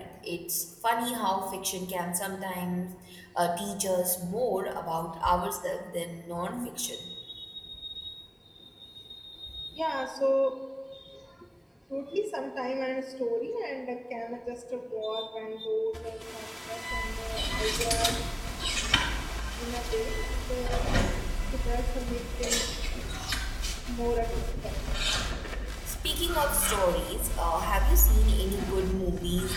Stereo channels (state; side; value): identical; both; correlation 1.00